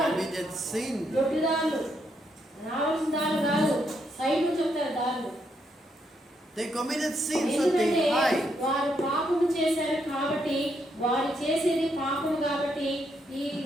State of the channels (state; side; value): normal; both; correlation 0.77